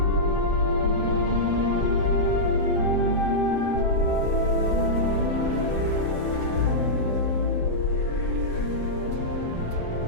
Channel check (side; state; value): right; late; 7.7 ms